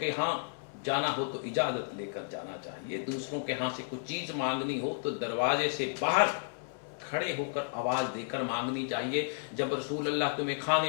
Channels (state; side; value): silent; right; 56 dB below the other